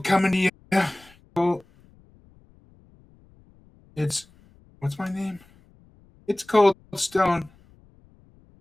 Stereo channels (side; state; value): left; noise; rumble, 29 dB below the sound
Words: coming to you. It's, what's my name? It's Cold Stone